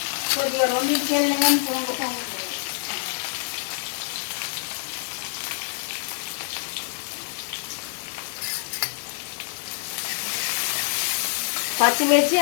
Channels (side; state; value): right; silent; digital silence